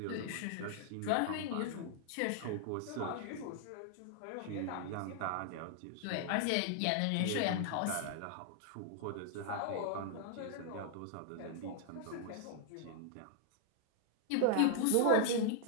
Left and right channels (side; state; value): both; different; correlation 0.00